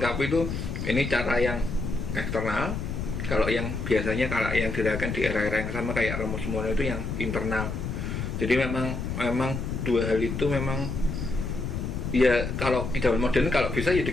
itu ini cara yang eksternal. Kalau yang biasanya kalau yang dilakukan di era-era yang sama kayak Romo Sumono itu yang internal. Jadi memang dua hal itu memang ya, kalau di zaman modern kalau bisa ya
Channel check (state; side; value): noise; left; rumble, 4 dB below the sound